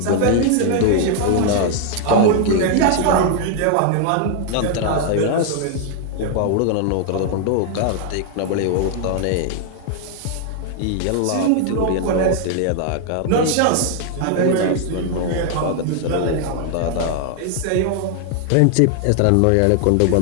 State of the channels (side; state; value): both; different; correlation 0.00